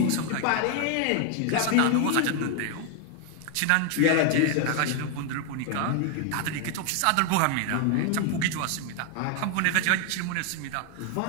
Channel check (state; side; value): different; both; correlation 0.00